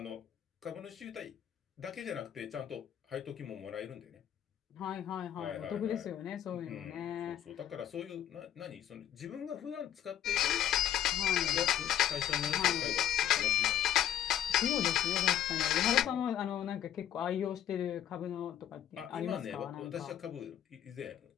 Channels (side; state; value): right; quieter; 10.6 dB